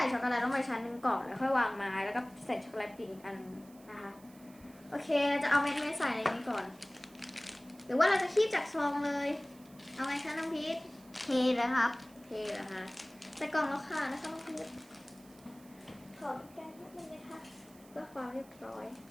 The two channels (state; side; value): noise; right; hiss, 25 dB below the sound